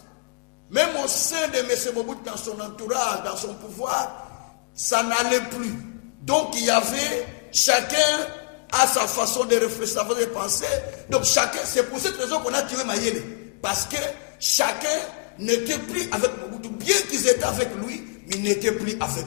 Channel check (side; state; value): right; quieter; 38.1 dB